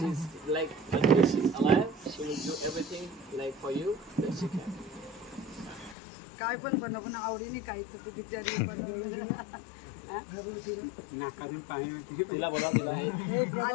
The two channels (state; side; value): drops out; right; at 6.0 s